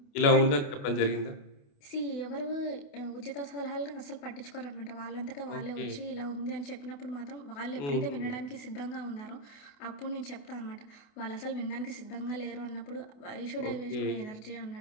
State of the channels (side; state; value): right; late; 28 ms